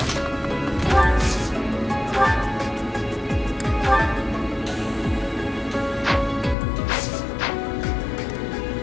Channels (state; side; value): drops out; right; at 6.6 s